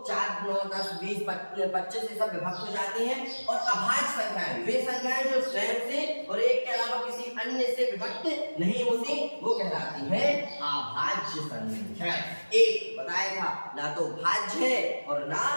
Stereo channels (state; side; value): inverted; both; correlation -1.00